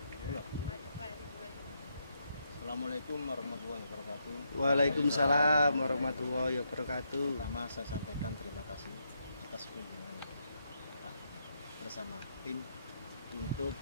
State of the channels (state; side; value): inverted; both; correlation -0.79